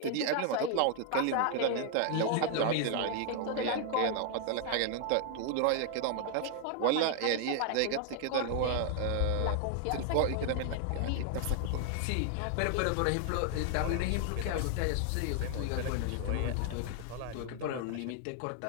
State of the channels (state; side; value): different; both; correlation 0.00